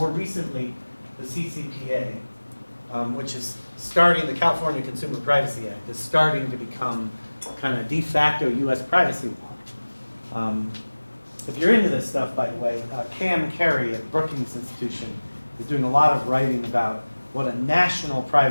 recently, the CCPA, which is starting, the California Consumer Privacy Act, is starting to become kind of de facto US privacy law. If you're into this stuff, by the way, Cam Carey at Brookings Institution is doing a lot of writing about what a national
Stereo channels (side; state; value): both; inverted; correlation -1.00